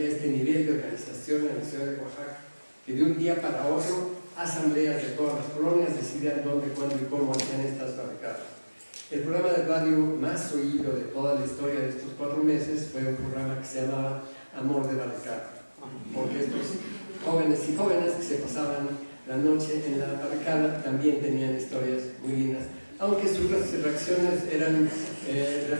este nivel de organización en la ciudad de Oaxaca, que de un día para otro asambleas de todas las colonias decidían dónde, cuándo y cómo hacían estas barricadas. El programa de radio más oído de toda la historia de estos 4 meses fue un programa que se llamaba Amor de Barricada, porque estos jóvenes y jóvenes que se pasaban la noche en la barricada también tenían historias muy lindas, aunque sus reacciones eran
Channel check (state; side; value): inverted; both; correlation -1.00